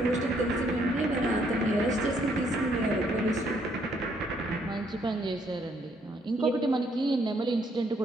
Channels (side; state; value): both; normal; correlation 0.69